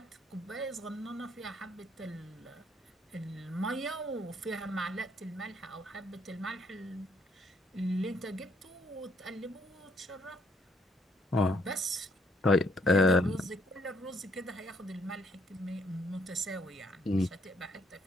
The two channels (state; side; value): normal; both; correlation 0.68